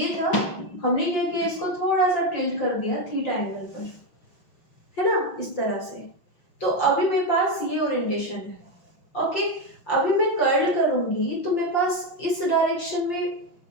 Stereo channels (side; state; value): right; late; 5.8 ms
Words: था, हमने क्या किया, इसको थोड़ा सा टिल्ट कर दिया थीटा एंगल पर, है ना, इस तरह से। तो अभी मेरे पास ये ओरिएंटेशन है। ओके, अभी मैं कर्ल करूंगी तो मेरे पास इस डायरेक्शन में